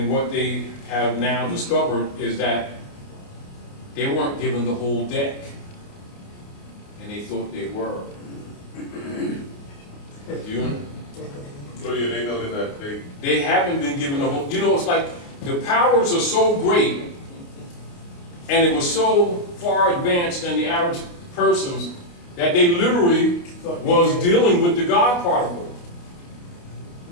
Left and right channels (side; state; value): right; late; 29 ms